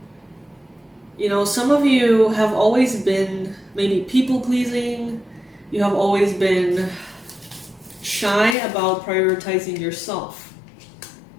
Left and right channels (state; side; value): drops out; right; at 8.6 s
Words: You know, some of you have always been maybe people-pleasing. You have always been shy about prioritizing yourself.